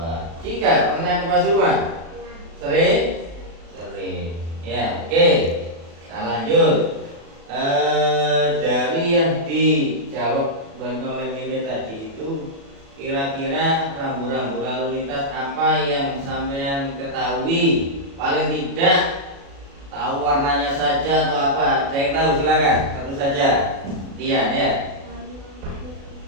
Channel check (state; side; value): late; left; 36 ms